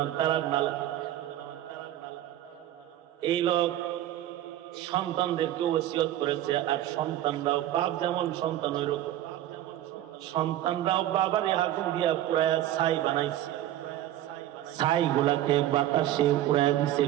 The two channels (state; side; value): quieter; left; 13.1 dB